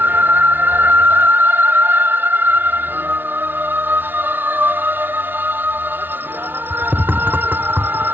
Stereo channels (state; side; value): late; left; 0.095 ms